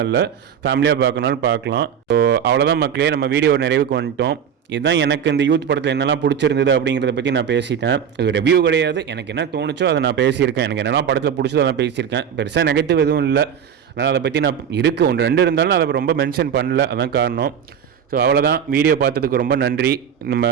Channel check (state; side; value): quieter; left; 8.2 dB